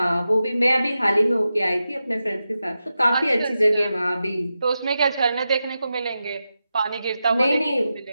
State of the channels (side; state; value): both; inverted; correlation -0.90